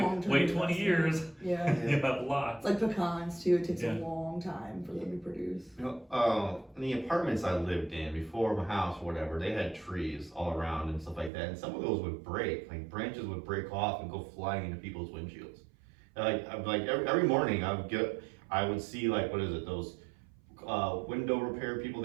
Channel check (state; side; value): drops out; left; at 11.3 s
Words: wait 20 years. Yeah. You have lots. Like pecans too. It takes a long time for them to produce. In the apartments I lived in before my house or whatever, they had trees all around and stuff like that, and some of those would break. Like branches would break off and go flying into people's windshields. Like every morning I would see like those window repair people